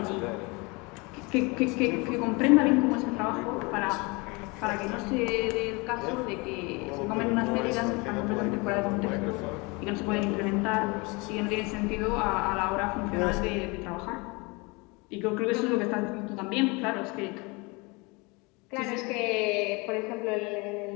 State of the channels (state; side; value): quieter; right; 27.4 dB